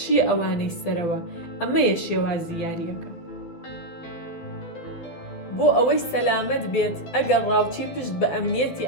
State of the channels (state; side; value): late; right; 12 ms